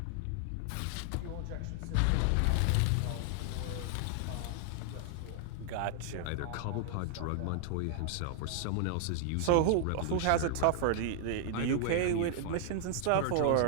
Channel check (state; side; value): different; both; correlation 0.00